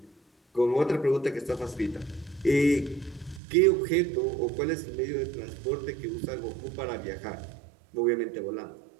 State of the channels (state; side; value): drops out; left; at 3.4 s